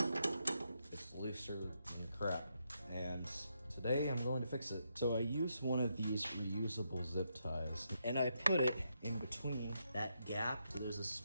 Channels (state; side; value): inverted; both; correlation -0.81